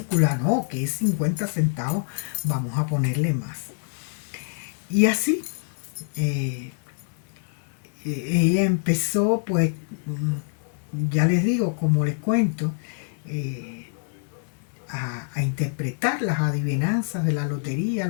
¿no? Que es 50 centavos, vamos a ponerle más. Y así, eh, ella empezó, pues, ya les digo, como les cuento, eh, a interpretar las adivinanzas de la lotería,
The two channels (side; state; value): right; silent; digital silence